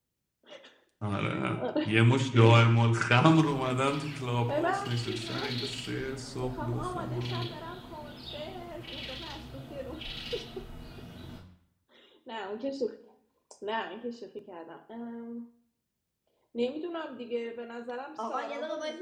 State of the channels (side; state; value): both; identical; correlation 1.00